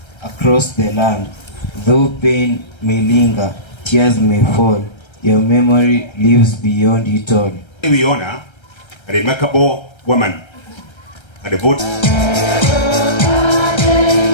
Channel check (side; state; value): right; late; 1.3 ms